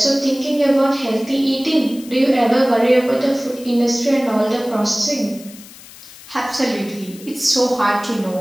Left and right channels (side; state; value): left; noise; hiss, 19 dB below the sound